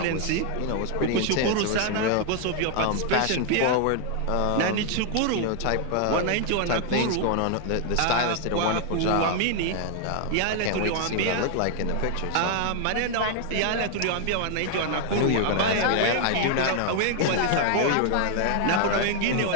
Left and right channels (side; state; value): both; different; correlation 0.00